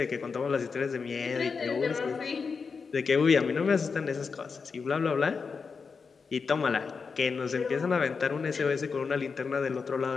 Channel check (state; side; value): quieter; right; 5.2 dB